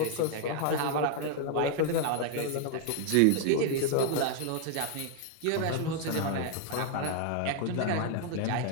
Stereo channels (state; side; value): different; both; correlation 0.00